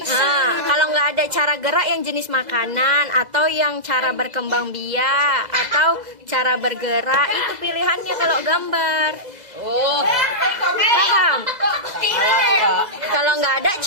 Nah, kalau nggak ada cara gerak yang jenis makanan atau yang cara berkembang biak atau cara bergerak itu pilihannya kalau gambar. Oh. Paham? Kalau nggak ada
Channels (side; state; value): left; late; 2.0 ms